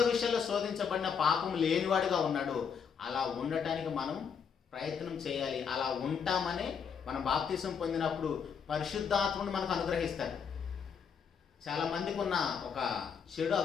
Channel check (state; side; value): quieter; right; 6.7 dB